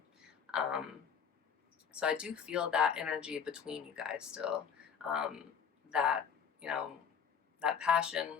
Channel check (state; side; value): quieter; right; 7.2 dB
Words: So I do feel that energy between you guys still. That, you know, that passion